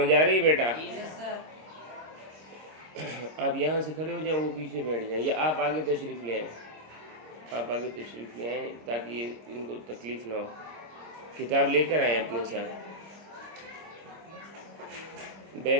آ رہی بیٹا؟ آپ یہاں سے کھڑے ہو جائیں، وہ پیچھے بیٹھ جائیں، یا آپ آگے تشریف لے آئیں۔ آپ آگے تشریف لے آئیں تاکہ ان کو تکلیف نہ ہو۔ کتاب لے کر آئیں اپنے ساتھ، بیگ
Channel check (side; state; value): left; late; 25 ms